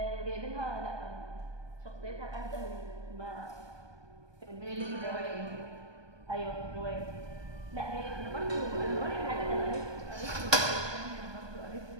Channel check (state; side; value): late; left; 1.2 ms